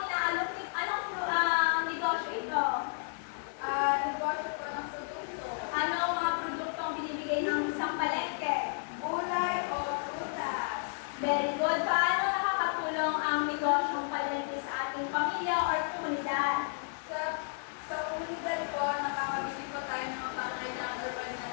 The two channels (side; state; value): right; silent; digital silence